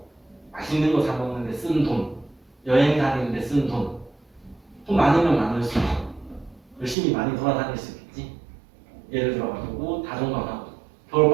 맛있는 거 사 먹는데 쓴 돈, 여행 다니는데 쓴 돈, 돈 많으면 많을수록 열심히 많이 돌아다닐 수 있겠지. 예를 들어가지고 다종방하고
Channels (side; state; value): left; drops out; at 7.0 s